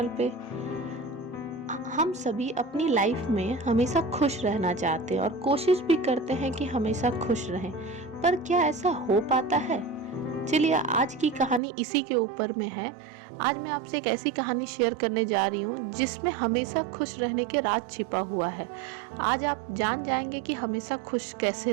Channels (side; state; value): left; drops out; at 11.6 s